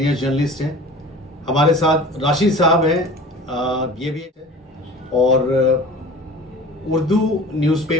जर्नलिस्ट हैं। हमारे साथ राशिद साहब हैं, ये भी है। और उर्दू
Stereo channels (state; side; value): normal; both; correlation 0.40